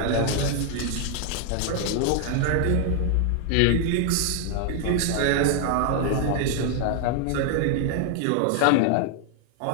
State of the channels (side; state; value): both; different; correlation 0.00